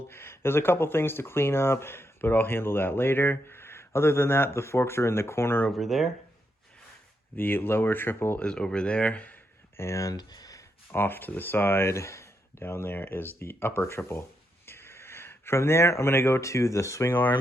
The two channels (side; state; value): both; normal; correlation 0.81